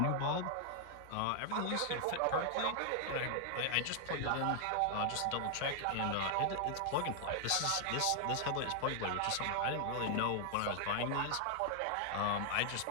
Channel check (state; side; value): different; both; correlation 0.00